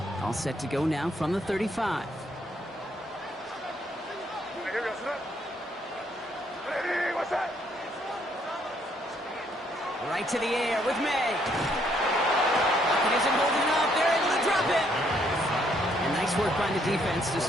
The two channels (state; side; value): normal; both; correlation 0.70